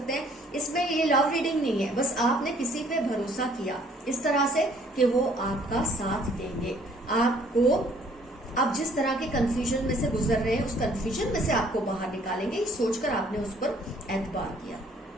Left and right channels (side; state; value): both; normal; correlation 0.60